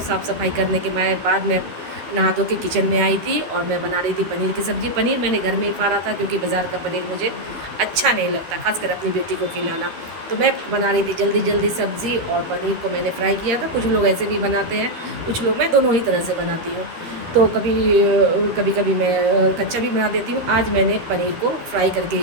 साफ़ सफाई करने के बाद मैं नहा धो के किचन में आई थी और मैं बना रही थी पनीर की सब्ज़ी। पनीर मैंने घर में ही फाड़ा था क्योंकि बाज़ार का पनीर मुझे अच्छा नहीं लगता, खासकर अपनी बेटी को खिलाना। तो मैं बना रही थी जल्दी जल्दी सब्ज़ी, और पनीर को मैंने फ्राई किया था। कुछ लोग ऐसे भी बनाते हैं, कुछ लोग, मैं दोनों ही तरह से बनाती हूँ। तो कभी कभी मैं कच्चा भी बना देती हूँ। आज मैंने पनीर को फ्राई करके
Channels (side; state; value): left; late; 13 ms